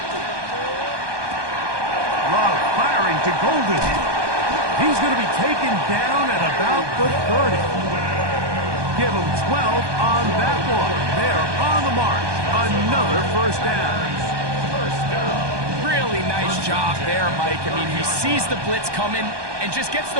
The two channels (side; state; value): left; late; 1.2 ms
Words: Love firing to Golden. He's going to be taken down at about the 30. Give him 12 on that one. They're on the march. Another first down. Really nice job there, Mike. I mean, he sees the blitz coming and just gets